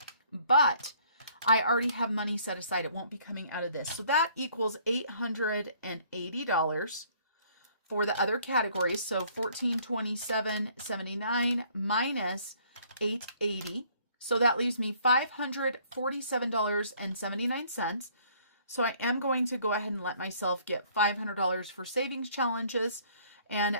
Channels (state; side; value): inverted; both; correlation -0.60